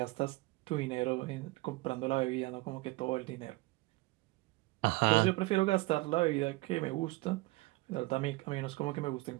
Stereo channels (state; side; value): quieter; left; 22.1 dB